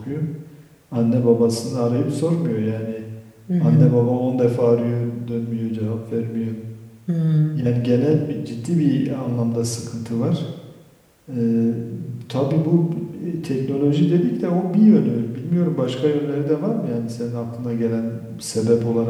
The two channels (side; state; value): both; identical; correlation 1.00